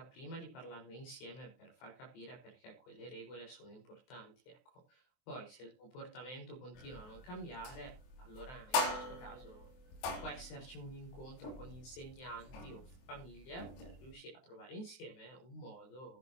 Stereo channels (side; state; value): right; late; 24 ms